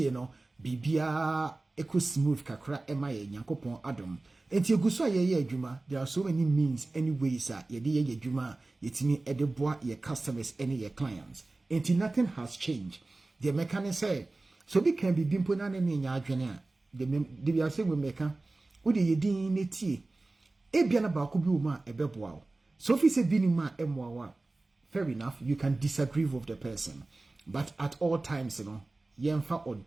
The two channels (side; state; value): left; quieter; 3.1 dB